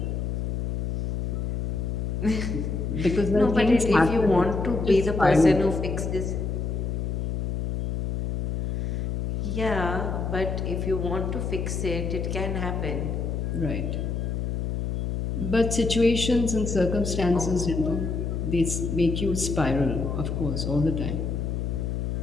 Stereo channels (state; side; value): noise; left; hum, 1 dB below the sound